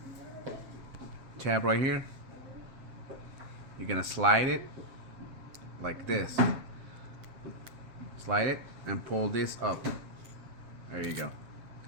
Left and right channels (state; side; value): late; left; 7.6 ms